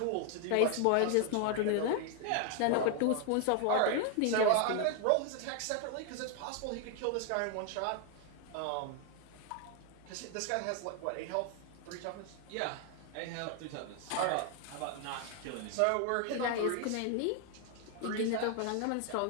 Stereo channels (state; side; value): different; both; correlation 0.00